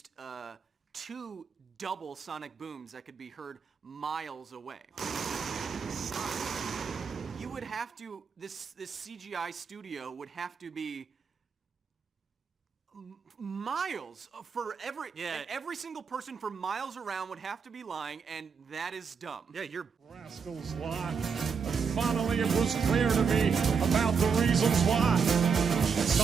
2 double sonic booms that could be heard miles away. You would have to, this CGI studio would have to be miles for every single person for miles around would have to be lying, and that is dumb. Yeah, you're rascals lie. Finally, it was clear to me about the reasons why. It's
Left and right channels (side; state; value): left; quieter; 5.9 dB